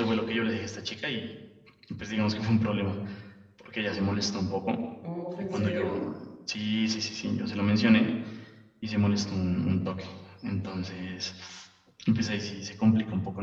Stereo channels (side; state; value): both; identical; correlation 1.00